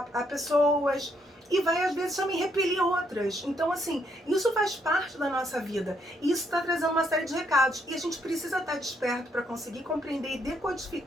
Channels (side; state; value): both; normal; correlation 0.73